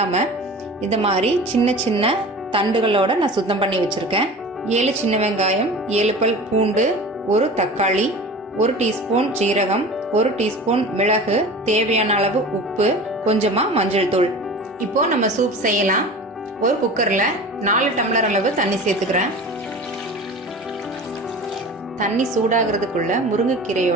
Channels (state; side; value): normal; both; correlation 0.37